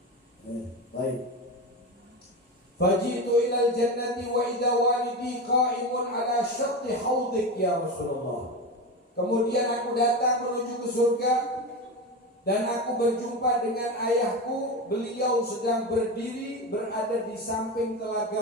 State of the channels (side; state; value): both; normal; correlation 0.21